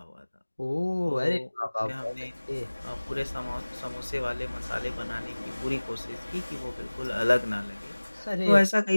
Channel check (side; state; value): both; inverted; correlation -1.00